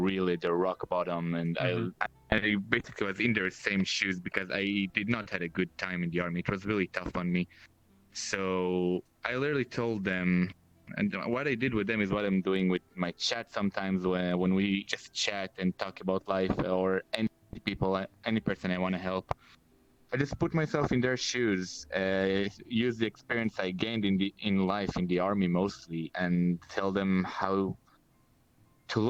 the rock bottom, and Mm-hmm. I basically was in their same shoes because I did not had a good time in the army. It was really tough on me. So I literally told them, and what I did with them is what I'm doing with my chat sometimes when we just chat and talk about life or any people, any person I want to help. I just put myself in their shoes, use the experience I gained in life in the army mostly, and tell them how to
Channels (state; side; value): identical; both; correlation 1.00